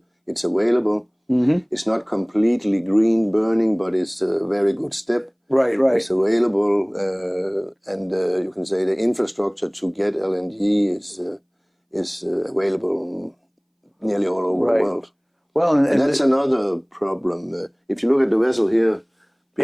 It's available. Mm-hmm. It's not completely green burning, but it's a very good step. Right, right. It's available, and you can say the infrastructure to get LNG is available nearly all over the world. Well, and that's another problem. If you look at the vessel here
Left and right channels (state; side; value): identical; both; correlation 1.00